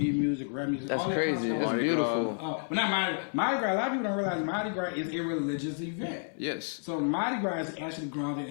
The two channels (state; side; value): silent; right; digital silence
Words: music, rap music. That's all that crazy. kind of That's stuff. beautiful. But not Mardi Gras. A lot of people don't realize Mardi Gras is a religious event. Yes. So Mardi Gras is actually grounded